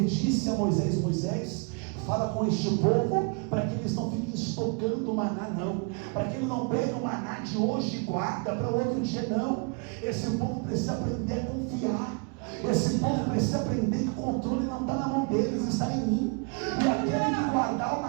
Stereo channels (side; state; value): left; quieter; 33.9 dB